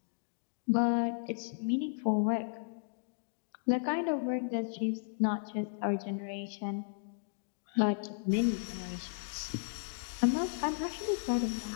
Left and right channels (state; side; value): silent; right; digital silence